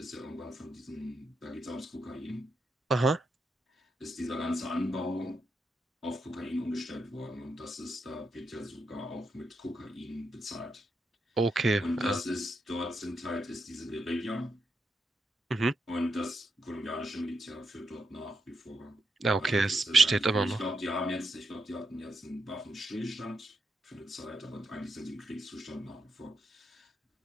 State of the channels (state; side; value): normal; both; correlation 0.83